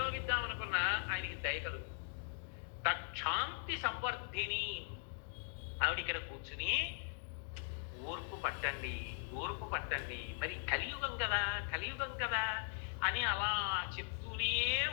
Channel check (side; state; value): right; silent; 51 dB below the other